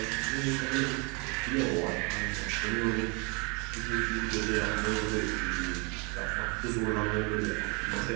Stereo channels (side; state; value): left; quieter; 31.5 dB